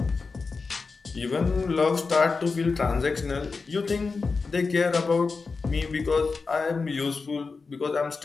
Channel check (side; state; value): right; quieter; 4.4 dB